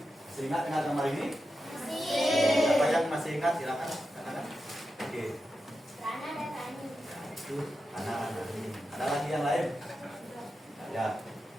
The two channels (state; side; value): normal; both; correlation 0.89